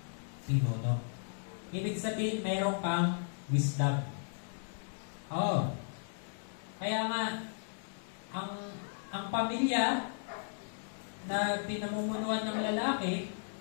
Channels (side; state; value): right; silent; digital silence